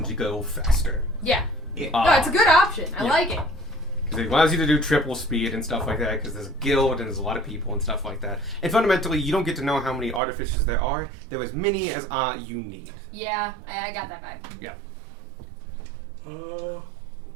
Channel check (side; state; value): left; drops out; at 10.2 s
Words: to go faster. Yeah. No, it's a good option. I like it. Because it allows you to do triple speed and stuff like that, because there's a guild and there's a lot of people and stuff like that. And fundamentally, you don't get to know how many artificers there are. There are as many as you need. Yeah, I got that vibe. Yeah. Would